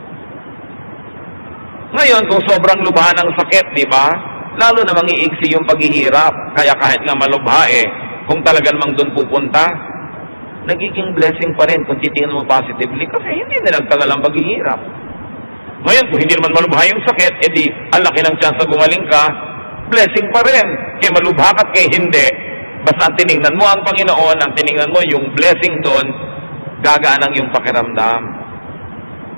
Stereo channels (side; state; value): both; inverted; correlation -1.00